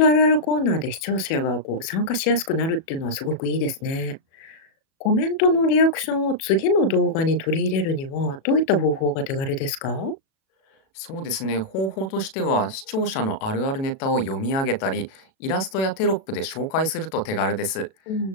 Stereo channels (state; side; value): late; right; 37 ms